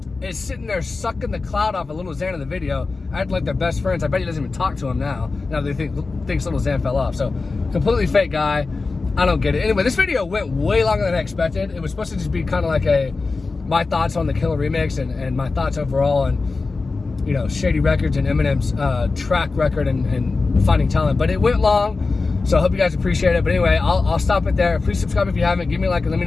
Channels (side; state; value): right; quieter; 3.9 dB